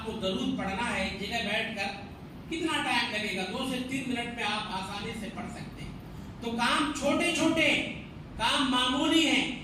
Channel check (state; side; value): identical; both; correlation 1.00